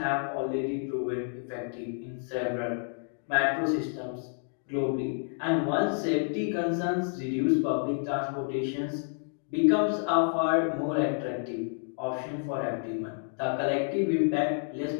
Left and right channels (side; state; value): right; silent; 58 dB below the other